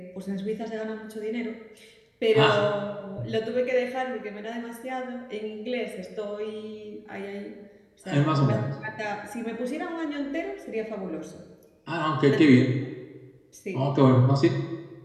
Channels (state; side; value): identical; both; correlation 1.00